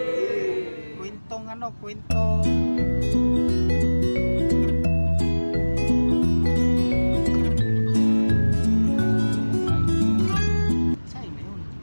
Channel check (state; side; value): inverted; both; correlation -1.00